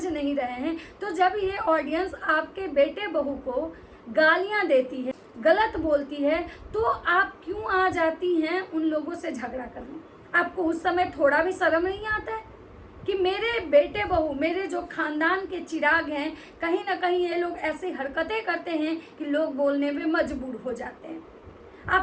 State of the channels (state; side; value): identical; both; correlation 1.00